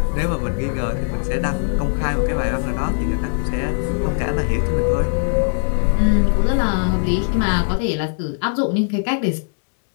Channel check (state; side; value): silent; right; digital silence